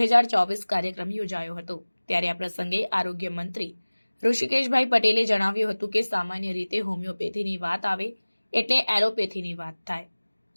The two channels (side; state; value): both; inverted; correlation -1.00